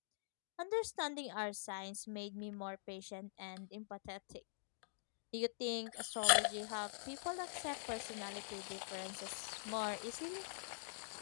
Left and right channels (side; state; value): right; silent; digital silence